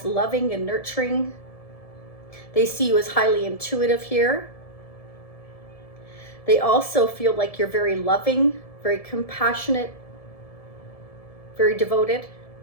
loving and nurturing. They see you as highly intuitive here. They also feel like you're very loving, very compassionate, very devoted.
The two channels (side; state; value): right; late; 1.7 ms